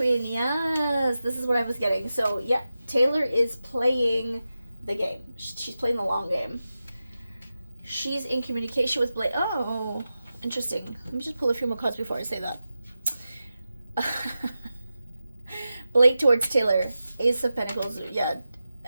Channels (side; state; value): both; inverted; correlation -0.92